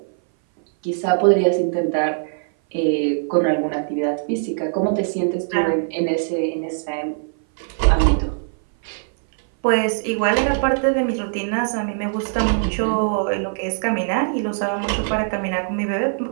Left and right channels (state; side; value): silent; left; 59 dB below the other